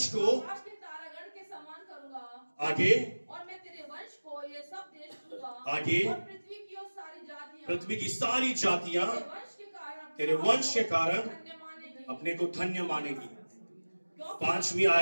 को के समान करूंगा। आगे और मैं तेरे वंश को ये सब देश दूंगा। आगे और पृथ्वी की सारी जातियां तेरे वंश के कारण अपने को धन्य मानेगी। 5वीं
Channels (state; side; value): inverted; both; correlation -1.00